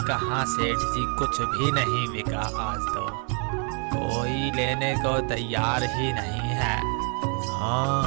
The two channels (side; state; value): left; quieter; 39.6 dB